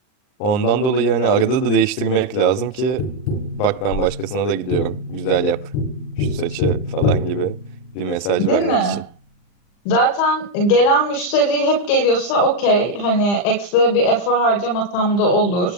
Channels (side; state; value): right; late; 39 ms